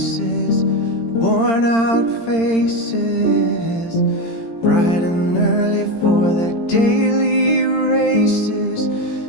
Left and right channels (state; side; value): late; right; 17 ms